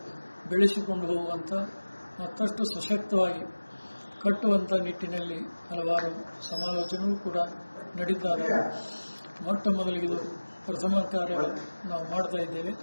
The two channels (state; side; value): inverted; both; correlation -1.00